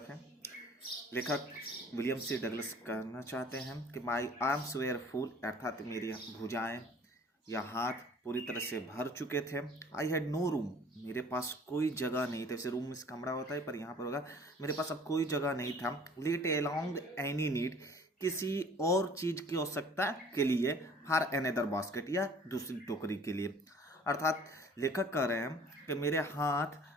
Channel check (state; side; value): normal; both; correlation 0.51